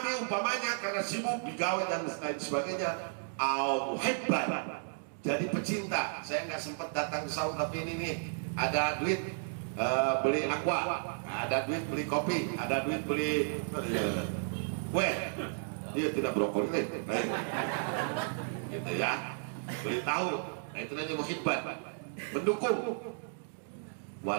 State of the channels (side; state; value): left; silent; digital silence